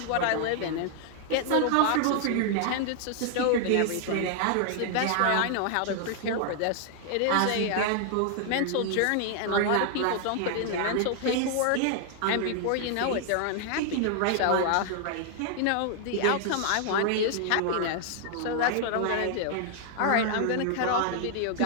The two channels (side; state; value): both; different; correlation 0.00